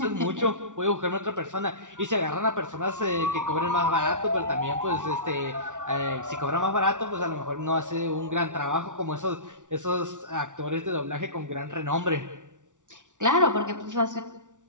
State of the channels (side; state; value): left; late; 0.87 ms